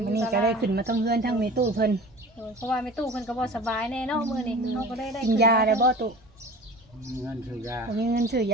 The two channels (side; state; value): both; normal; correlation 0.38